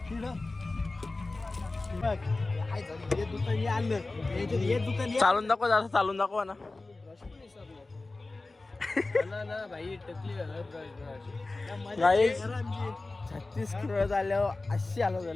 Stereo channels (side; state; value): right; quieter; 3.3 dB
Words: चालून दाखव जरा चालून दाखवा ना. भाई टकली 36 किलो झाल्यावर अशी आलो